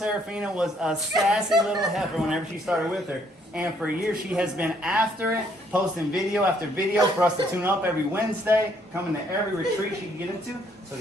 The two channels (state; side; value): normal; both; correlation 0.67